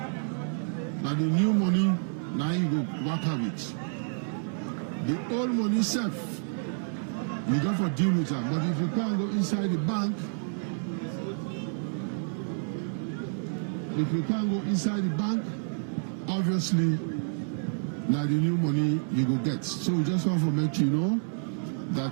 now the new money, now you go work out it. The old money safe, you go for deal with them. But if you can't go inside the bank, obviously, now the new money you go get. So we just want to make you know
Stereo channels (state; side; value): silent; left; digital silence